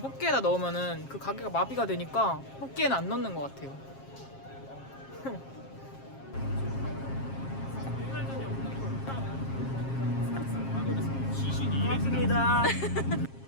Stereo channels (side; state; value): right; late; 7.4 ms